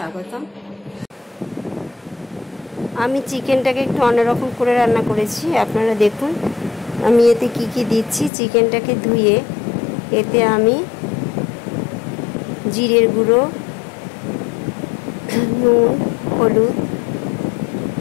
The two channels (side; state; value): right; drops out; at 8.3 s